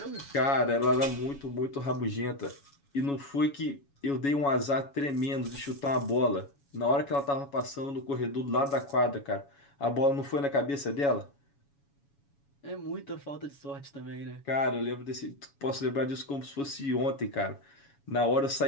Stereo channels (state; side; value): late; right; 7.1 ms